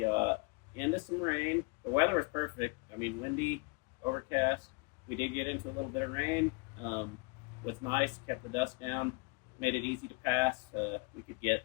into some rain. The weather was perfect. I mean, windy, overcast. We did get into a little bit of rain. Was nice, kept the dust down, made it easy to pass. We could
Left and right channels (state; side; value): quieter; right; 30.1 dB